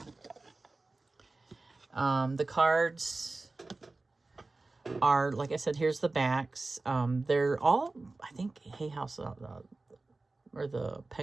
The cards are, like I said, here's the backs. They're all, I think, Hay House or the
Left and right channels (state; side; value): quieter; left; 3.4 dB